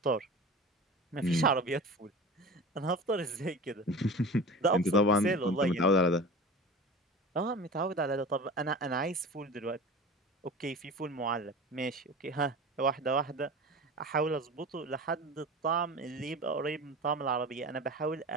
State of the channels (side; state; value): both; normal; correlation 0.34